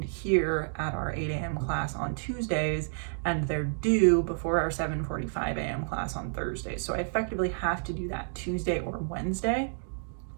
here at our 8 a.m. class on Tuesdays, and they're due before our 7:45 a.m. class on Thursdays. So I effectively have to do that Tuesday or Wednesday.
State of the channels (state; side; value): silent; left; digital silence